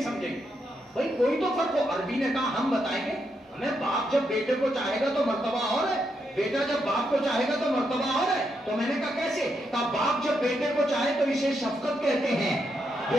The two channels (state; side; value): normal; both; correlation 0.81